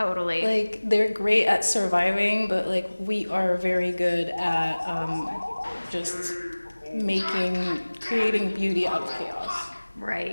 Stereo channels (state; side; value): inverted; both; correlation -1.00